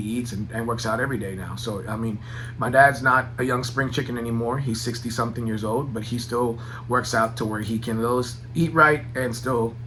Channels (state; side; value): identical; both; correlation 1.00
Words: and works out every day now. So, I mean, my dad's not a young spring chicken anymore. He's 60-something years old, but he still works out to where he can eat right and still